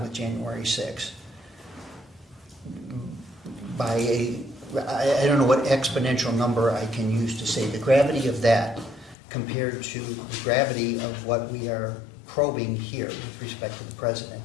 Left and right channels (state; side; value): drops out; right; at 9.2 s